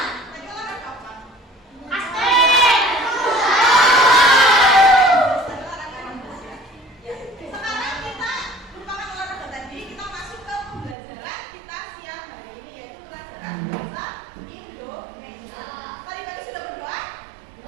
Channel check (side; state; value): left; drops out; at 11.0 s